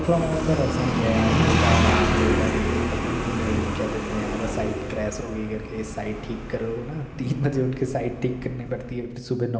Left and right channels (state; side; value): identical; both; correlation 1.00